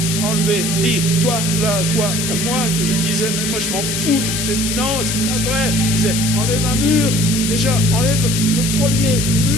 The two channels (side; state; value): left; noise; hiss, 2 dB below the sound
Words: enlever? Dis, toi, là, toi, à moi, que je lui disais, mais moi je m'en fous. Non, c'est pas vrai. Il disait, enlève un mur. Déjà, enlève le premier